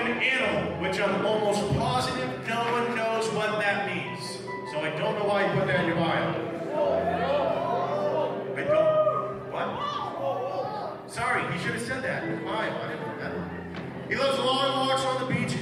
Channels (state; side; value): identical; both; correlation 1.00